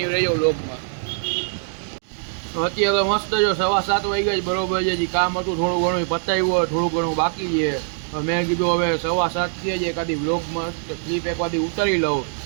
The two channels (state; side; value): silent; left; digital silence